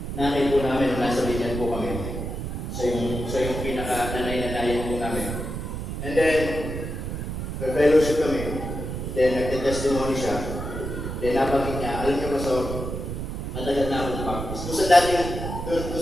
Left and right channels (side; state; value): right; noise; rumble, 5 dB below the sound